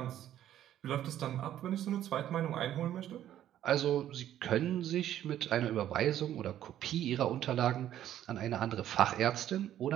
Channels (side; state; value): left; quieter; 11.7 dB